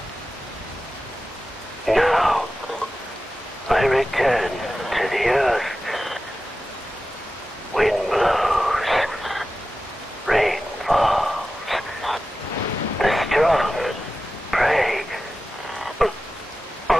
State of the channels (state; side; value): normal; both; correlation 0.93